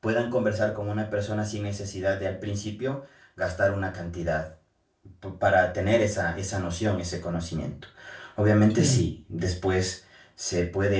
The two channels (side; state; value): both; identical; correlation 1.00